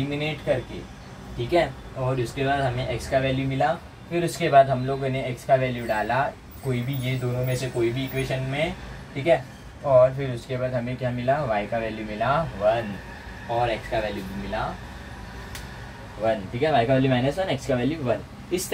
करके, ठीक है। और उसके बाद हमें x का वैल्यू मिला, फिर उसके बाद हम लोगों ने x का वैल्यू डाला कोई भी, ये दोनों में से कोई भी इक्वेशन में, ठीक है। और फिर उसके बाद हमें क्या मिला, y का वैल्यू मिला 1 और x का वैल्यू भी मिला 1, ठीक है। y का वैल्यू -1, x का वैल्यू 1। इस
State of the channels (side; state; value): both; identical; correlation 1.00